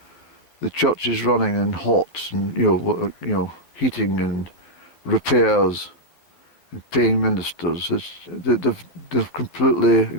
the church is running and hot, and heating and repairs and paying ministers. They've completely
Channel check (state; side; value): late; right; 12 ms